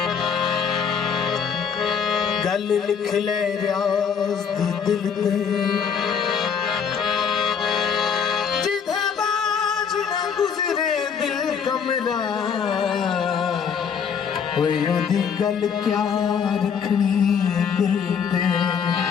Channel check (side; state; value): right; quieter; 6.9 dB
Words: गल लिख ले रियाज दी दिल ते जिधे बाज ना गुजरे दिल कमरा ओदी गल क्या रखनी दिल ते